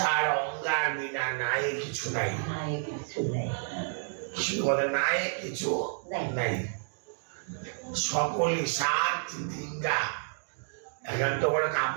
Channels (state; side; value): silent; left; digital silence